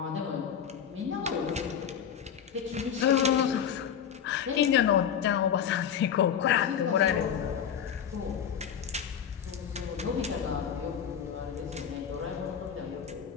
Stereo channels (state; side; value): quieter; right; 8.4 dB